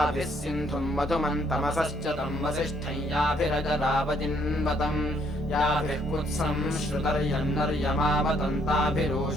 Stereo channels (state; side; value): normal; both; correlation 0.68